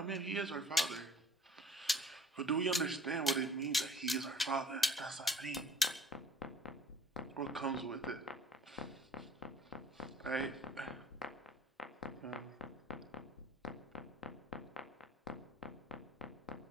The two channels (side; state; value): both; normal; correlation 0.52